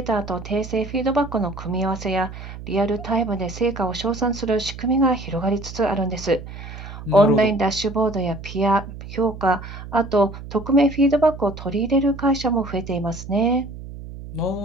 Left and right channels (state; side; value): noise; right; hum, 12 dB below the sound